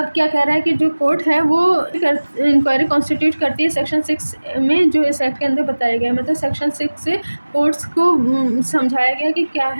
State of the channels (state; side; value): inverted; both; correlation -1.00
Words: क्या कह रहा है कि जो कोर्ट है वो इंक्वायरी कॉन्स्टिट्यूट करती है सेक्शन 6 में, जो इस एक्ट के अंदर बताया गया है। मतलब सेक्शन 6 से कोर्ट्स को समझाया गया कि क्या